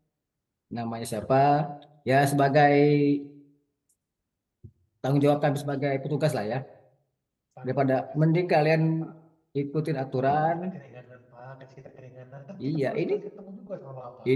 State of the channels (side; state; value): both; identical; correlation 1.00